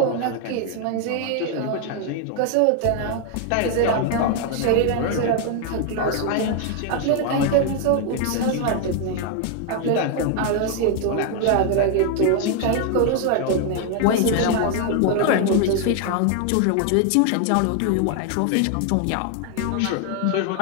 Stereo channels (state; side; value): different; both; correlation 0.00